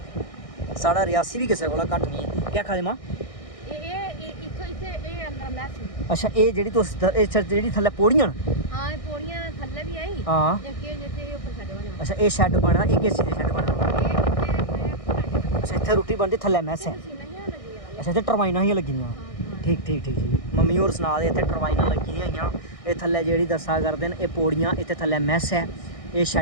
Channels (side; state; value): right; late; 1.6 ms